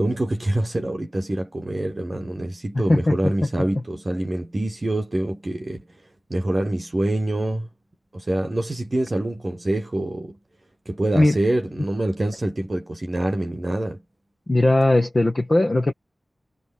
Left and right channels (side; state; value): both; normal; correlation 0.97